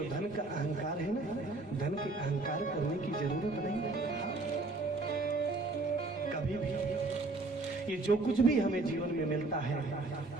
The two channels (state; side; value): quieter; left; 3.3 dB